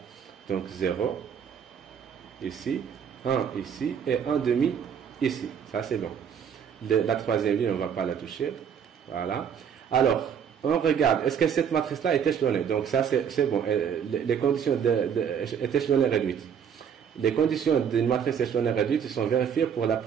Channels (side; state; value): left; quieter; 7.8 dB